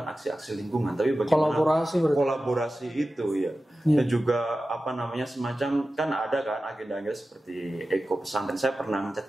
aksi-aksi lingkungan, tapi bagaimana kolaborasi itu ya. Dan juga semacam kan ada kan agenda-agenda seperti Eko Pesantren. Saya pernah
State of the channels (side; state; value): both; normal; correlation 0.94